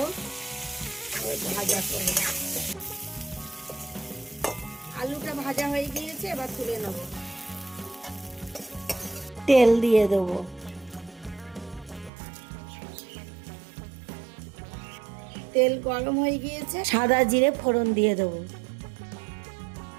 ভাজা করে। আলুটা ভাজা হয়ে গিয়েছে, এবার তুলে নেব। তেল দিয়ে দেবো, তেল গরম হয়ে গিয়েছে, সাদা জিরে ফোড়ন দিয়ে দেবো।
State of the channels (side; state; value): left; drops out; at 12.1 s